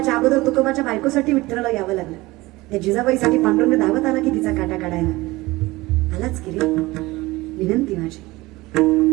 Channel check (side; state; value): left; quieter; 20.4 dB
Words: अगोदर तुकोबाच्या बायकोसाठी विठ्ठलाला यावं लागलं. त्या जिजाबाईसाठी पांडुरंग धावत आला की तिचा काटा काढायला. आलाच की रे. विनंती माझी,